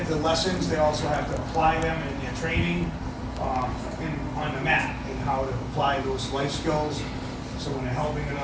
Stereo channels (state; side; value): identical; both; correlation 1.00